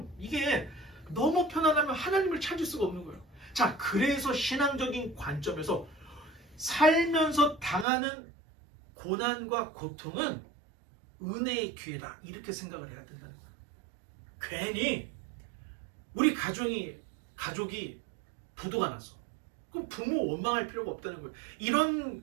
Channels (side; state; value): left; drops out; at 7.9 s